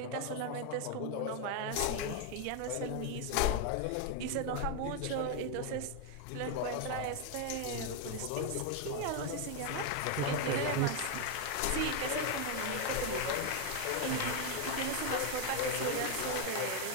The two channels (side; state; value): both; different; correlation 0.01